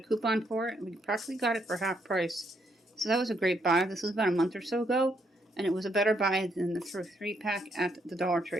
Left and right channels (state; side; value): normal; both; correlation 0.75